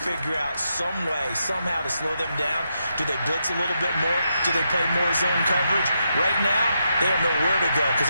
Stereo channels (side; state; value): both; inverted; correlation -0.83